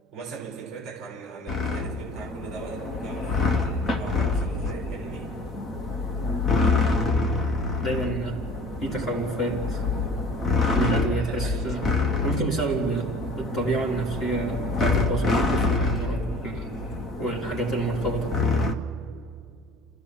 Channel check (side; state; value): both; normal; correlation 0.45